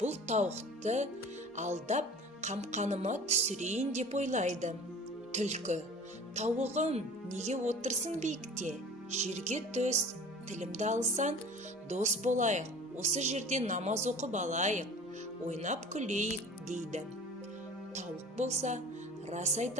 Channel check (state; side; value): normal; both; correlation 0.43